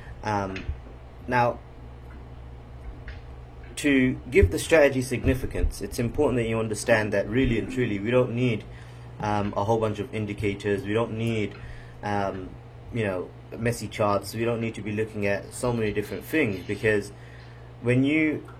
Now, to give the strategy significance, it's important that you understand that really and truly we don't need a whole bunch of indicators. We don't need messy charts. We don't need to be looking at so many different things, because when you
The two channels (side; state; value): both; identical; correlation 1.00